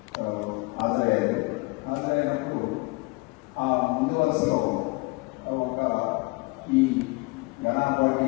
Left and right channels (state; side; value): quieter; right; 25.9 dB